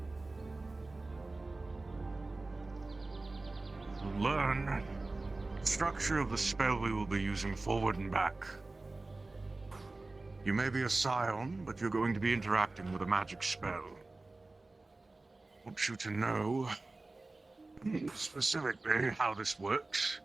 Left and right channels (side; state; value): left; quieter; 3.2 dB